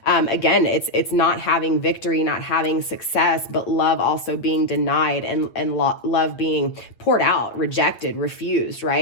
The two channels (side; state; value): right; late; 8.8 ms